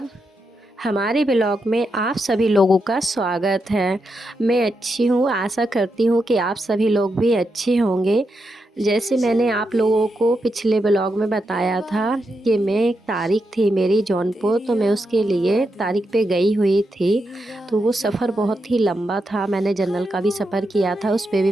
हमारे blog में आप सभी लोगों का स्वागत है। मैं अच्छी हूँ, आशा करती हूँ कि आप सभी लोग भी अच्छे होंगे। जैसे मैंने आप लोगों को पिछले ब्लॉग में बताया था कि मैं एक तारीख थी मेरी जौनपुर, तो मैं उसके लिए तारीख पे गई हुई थी। तो वो सफ़र बहुत ही लंबा था। मैंने जनरल का भी सफ़र किया था, उस पे भी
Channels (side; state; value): both; normal; correlation 0.84